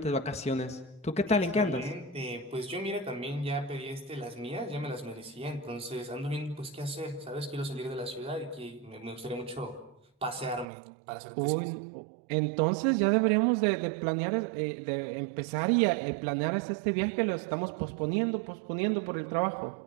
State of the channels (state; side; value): drops out; left; at 10.7 s